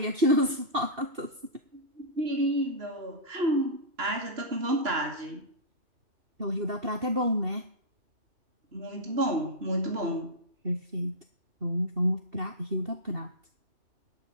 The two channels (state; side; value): late; left; 2.7 ms